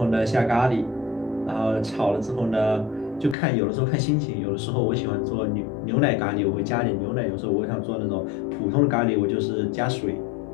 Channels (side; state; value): right; drops out; at 3.4 s